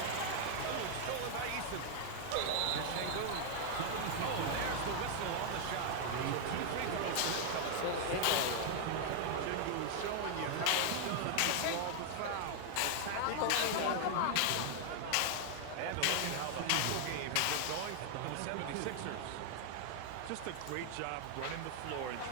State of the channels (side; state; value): both; different; correlation 0.00